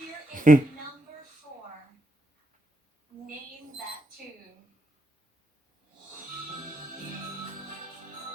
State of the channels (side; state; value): both; normal; correlation 0.79